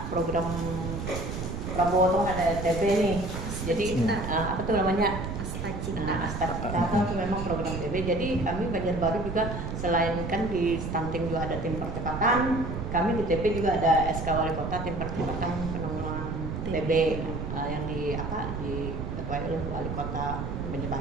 program Prabowo tuh ada TB nih. Jadi apa tuh namanya? Asta Cita itu memang program TB. Jadi kami Banjarbaru juga selain kan di stunting juga ada tim percepatan, kami di TB juga ada SK Wali Kota tim percepatan penanggulangan TB yang diketuai oleh Wali Kota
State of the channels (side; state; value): right; noise; rumble, 5 dB below the sound